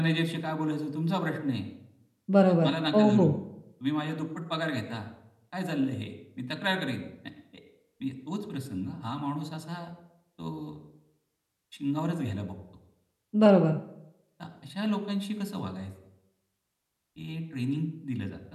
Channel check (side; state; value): both; identical; correlation 1.00